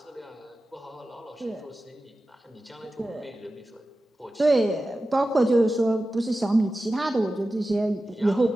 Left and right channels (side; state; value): both; normal; correlation 0.94